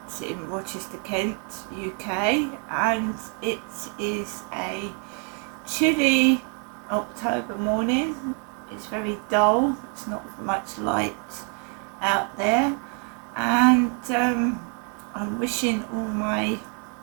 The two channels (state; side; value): quieter; left; 39.1 dB